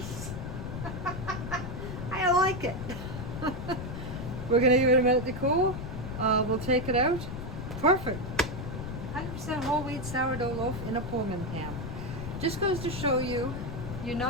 I like it. We're gonna give it a minute to cool. We'll take it out. Perfect. 100% whole wheat sourdough loaf in a Pullman pan. Just goes to show you, you're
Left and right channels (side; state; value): left; noise; rumble, 6 dB below the sound